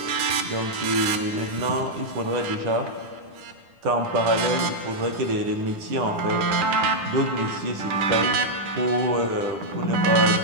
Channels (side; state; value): left; late; 9.9 ms